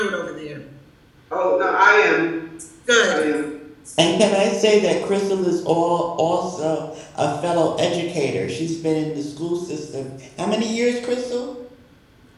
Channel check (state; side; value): identical; both; correlation 1.00